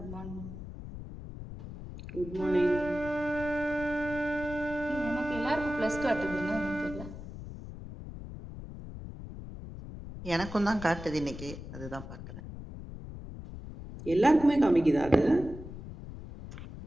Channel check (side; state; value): left; noise; rumble, 11 dB below the sound